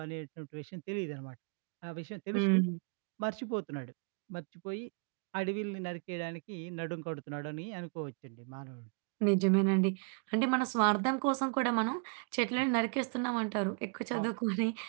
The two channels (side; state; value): left; quieter; 38.4 dB